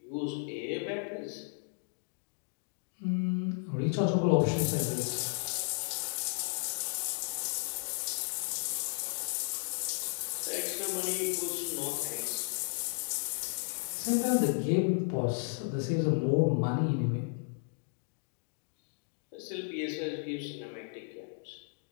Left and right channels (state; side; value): silent; right; 55 dB below the other